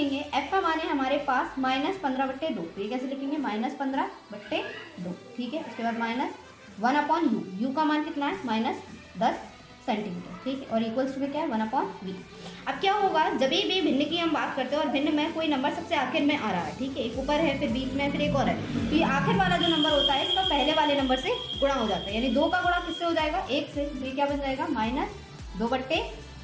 f का मान है हमारे पास -15/2, तो ये कैसे लिखेंगे, -15/2। ठीक है, उसके बाद -1/u, u का मान कितना है, -10 सेंटीमीटर। ठीक है, और इक्वल्स टू में क्या है, 1/v। अब क्या होगा, जब भी भिन्न की हम बात करते हैं और भिन्न में कोई नंबर सबसे आखिर में आ रहा है, ठीक है, एक ऊपर है फिर बीच में फिर एक और है, तो ये आखिर वाला जो नंबर होता है इसका पहले वाले नंबर से गुणा हो जाता है, यानी 2 का गुणा किससे हो जाएगा, 1 से। तो ये क्या बन जाएगा,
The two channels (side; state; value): both; identical; correlation 1.00